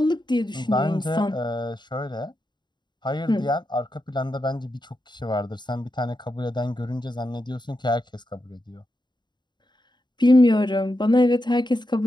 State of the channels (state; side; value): late; right; 0.22 ms